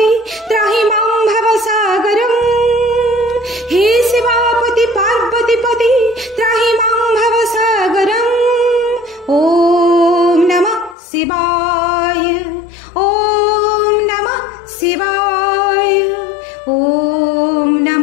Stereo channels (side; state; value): right; drops out; at 11.0 s